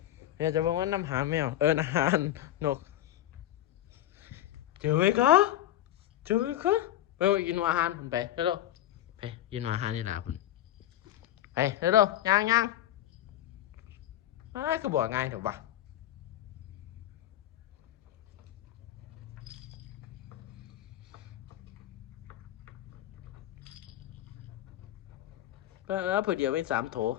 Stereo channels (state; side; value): quieter; right; 13.0 dB